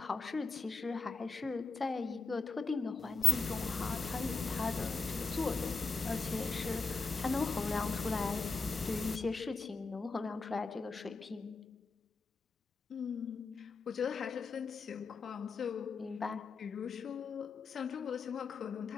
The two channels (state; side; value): quieter; right; 4.1 dB